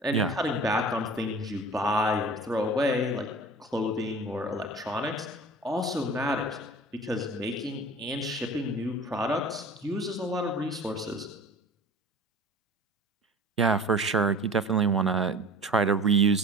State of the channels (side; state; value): both; normal; correlation 0.41